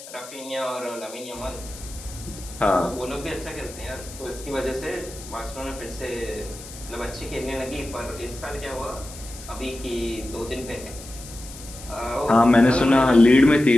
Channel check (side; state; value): left; noise; hiss, 15 dB below the sound